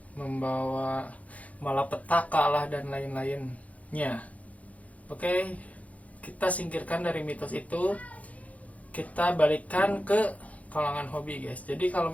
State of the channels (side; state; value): right; late; 0.068 ms